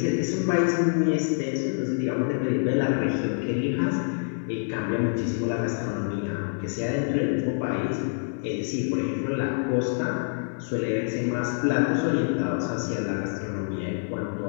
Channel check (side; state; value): right; silent; 61 dB below the other